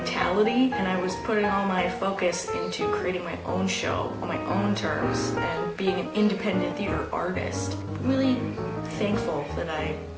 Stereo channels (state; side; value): identical; both; correlation 1.00